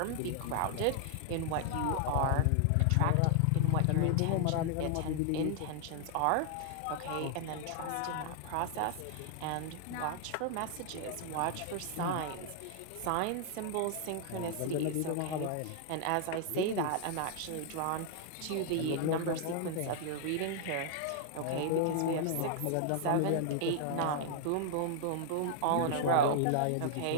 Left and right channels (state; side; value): different; both; correlation 0.00